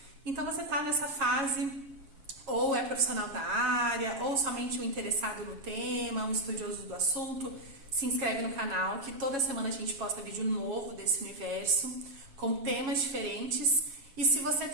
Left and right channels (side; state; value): left; late; 7.3 ms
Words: Então você está nessa fase, ou é profissional da área, ou somente um interessado no tema, um estudioso do assunto, se inscreve no canal, que toda semana a gente posta vídeo novo desse universo, com temas diferentes. E se você